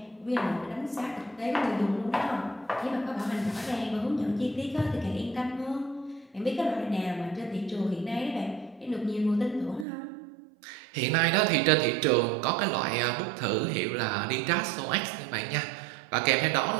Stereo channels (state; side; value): drops out; left; at 9.9 s